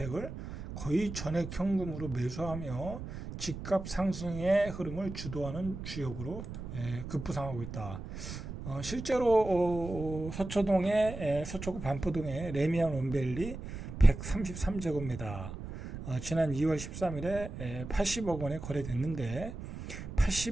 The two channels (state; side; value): noise; right; rumble, 9 dB below the sound